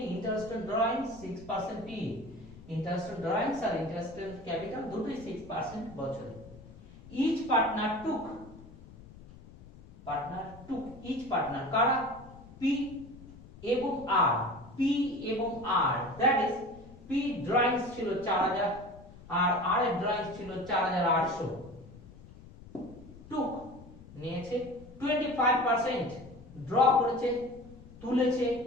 interest on drawings 6% PA, interest on drawings আর ইন্টারেস্ট অন ক্যাপিটাল দুটোই 6% বছরে। Each partner took each partner কারা পি এবং আর, পি এবং R, that is P drawings ছিল 4000 আর আর এর ড্রয়িংস ছিল 4800, টুক নিয়েছে 25%, ড্র করেছে তুলেছে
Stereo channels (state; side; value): noise; left; rumble, 19 dB below the sound